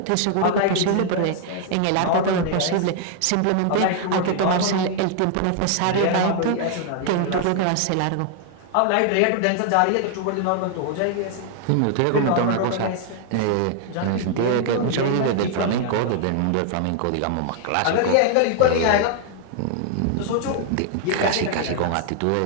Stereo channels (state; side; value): different; both; correlation 0.00